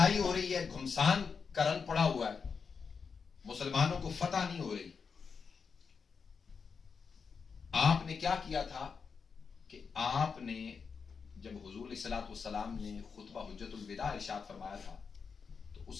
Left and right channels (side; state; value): right; quieter; 5.7 dB